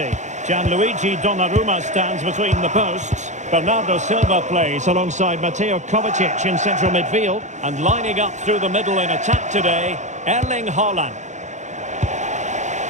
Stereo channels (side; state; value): left; late; 0.34 ms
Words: Gianluigi Donnarumma stands between the posts. Bernardo Silva plays alongside Mateo Kovacic in central midfield. And lining up through the middle in attack today, Erling Haaland.